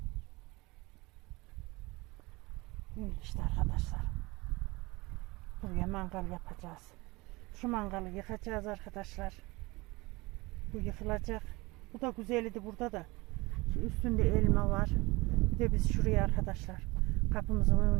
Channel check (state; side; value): quieter; left; 23.3 dB